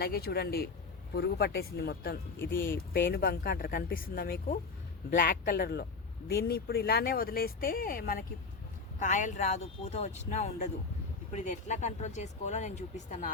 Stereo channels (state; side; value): quieter; right; 4.4 dB